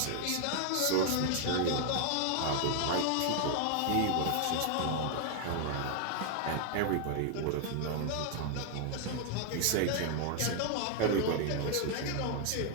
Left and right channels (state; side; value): different; both; correlation 0.00